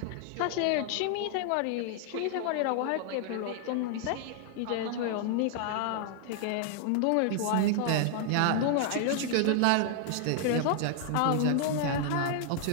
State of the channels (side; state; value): both; different; correlation 0.00